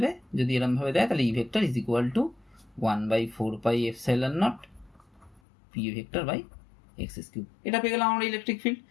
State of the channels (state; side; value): drops out; right; at 5.4 s